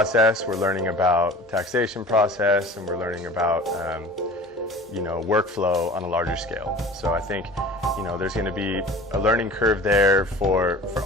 we're learning about taxation process, and we're learning about workflow on a larger scale. So I think there's going to be a learning curve there for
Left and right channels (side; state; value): both; normal; correlation 0.41